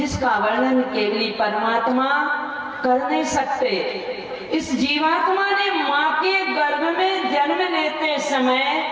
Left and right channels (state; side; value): identical; both; correlation 1.00